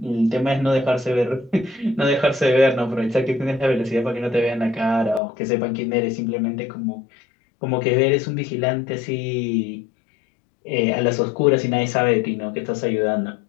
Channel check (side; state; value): right; drops out; at 5.2 s